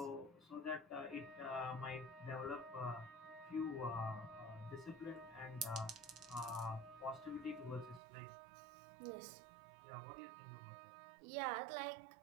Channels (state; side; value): drops out; left; at 8.0 s